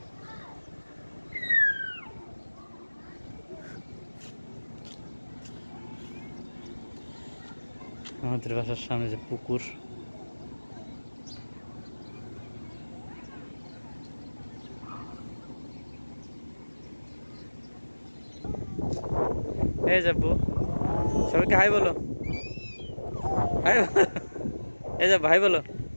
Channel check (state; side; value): inverted; both; correlation -1.00